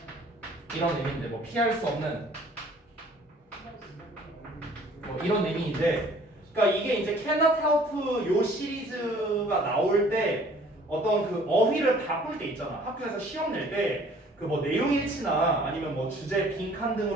이런 의미인데 뭐 피할 수 없는 뭐 이런 의미인데 그러니까 이게 이제 cannot help 요 시리즈가 나올 때 어떤 그 어휘를 바꿀 때 있잖아. 학교에서 시험 낼 때 그 뭐 내용일치나 아니면 뭐 주제 빈칸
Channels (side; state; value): both; normal; correlation 0.54